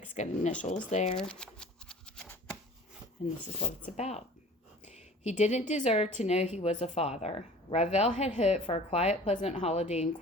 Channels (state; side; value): normal; both; correlation 0.44